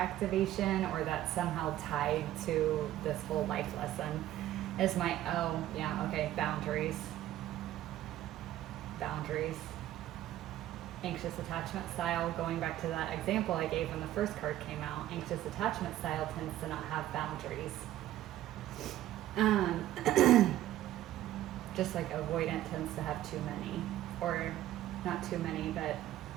or that's somehow tied to this whole life lesson. Is my, oh yeah, okay, boundaries. Boundaries. Anxious attachment style, going back to that example I gave when the first card came out, anxious attachment style tends to not have boundaries. Just like avoidant tends to have too many, or not too many, but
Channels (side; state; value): left; quieter; 13.6 dB